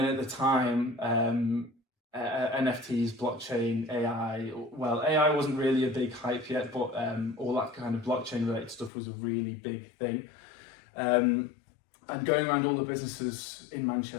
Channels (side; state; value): right; drops out; at 8.9 s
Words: at the time, NFTs, blockchain, AI. Well, AI wasn't really a big hype yet, but all that kind of blockchain related stuff was a really big thing. And going around all the businesses in